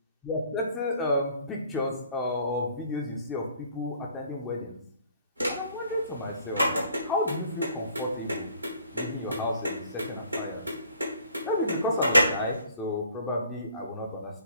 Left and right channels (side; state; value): both; inverted; correlation -0.57